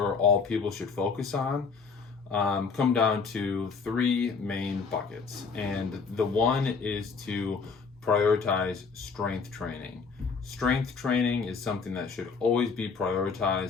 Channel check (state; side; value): quieter; right; 5.1 dB